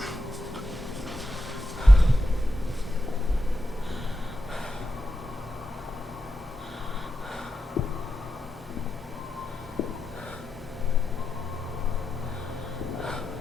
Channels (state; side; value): normal; both; correlation 0.88